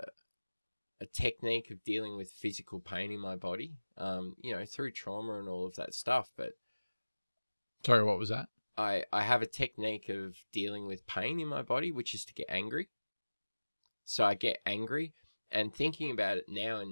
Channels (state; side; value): inverted; both; correlation -1.00